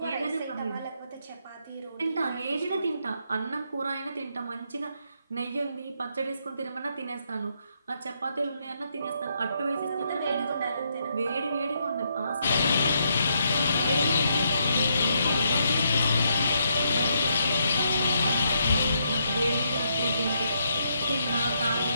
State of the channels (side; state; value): both; inverted; correlation -0.76